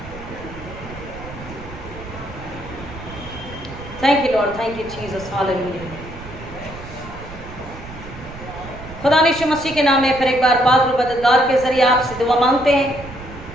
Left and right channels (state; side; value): noise; right; rumble, 14 dB below the sound